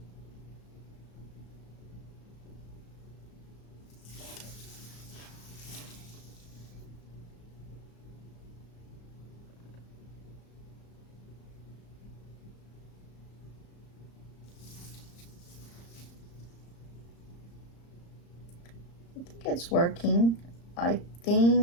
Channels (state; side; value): late; right; 35 ms